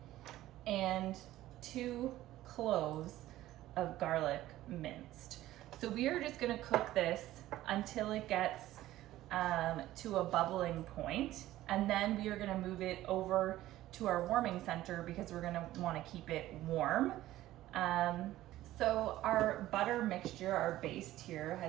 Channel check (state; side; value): quieter; left; 15.0 dB